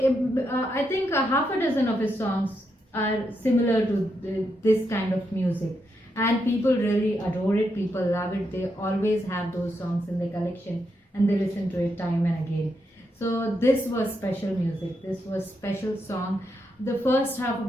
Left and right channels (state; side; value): normal; both; correlation 0.82